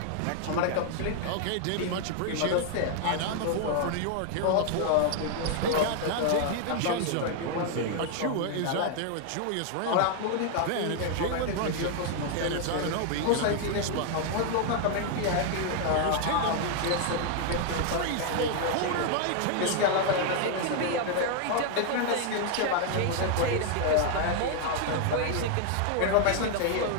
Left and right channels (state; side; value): different; both; correlation 0.00